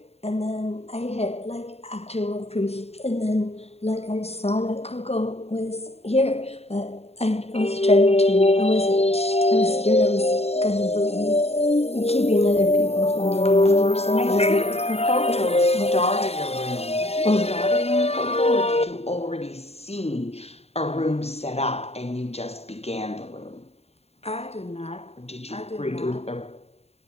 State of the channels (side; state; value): right; late; 0.30 ms